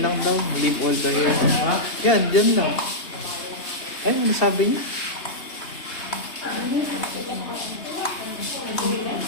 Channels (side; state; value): right; late; 2.8 ms